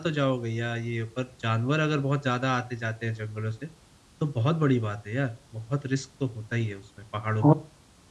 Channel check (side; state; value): both; identical; correlation 1.00